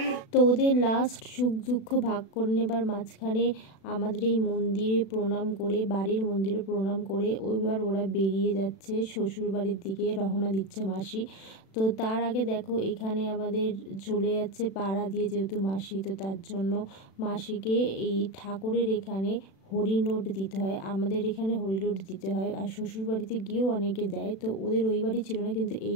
তো ওদের লাস্ট সুখ দুঃখ ভাগ করে নেবার মাঝখানে আমাদের এই মন্দিরে প্রণাম করে, বাড়ির মন্দিরে প্রণাম করে এবার ওরা বেরিয়ে যাচ্ছে শ্বশুর বাড়ির দিকে, রওনা দিচ্ছে মাসি। তো তার আগে দেখো এখানে আমাদের চলে যাচ্ছে পাড়া দিয়ে, যেহেতু মাসি, তো তার জন্য মাসিকে এই ঠাকুরের এখানে হরিনোট দিতে হয়। আমাদের এখানে হরিনোট দিতে হয়, আর শ্বশুর বাড়িতে গিয়েও অনেকে দেয়। তো ওদের ওই বাড়ি ছিল না, কিন্তু এই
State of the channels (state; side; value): late; right; 36 ms